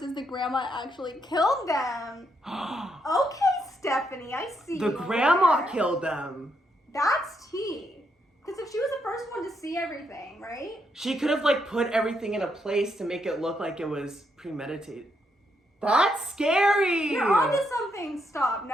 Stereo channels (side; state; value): both; normal; correlation 0.77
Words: is the grandma actually killed them. Okay, Stephanie, I see. The you grandma there. killed them. That's tea. Because if she was the first one to see everything, right? She could have like put everything in a place to make it look like it was premeditated. That's scary. You're onto something. Stop.